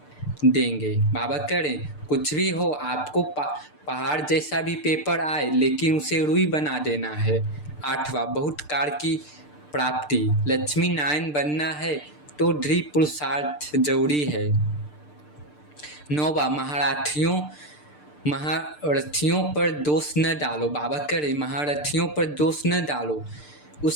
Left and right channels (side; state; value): right; late; 6.7 ms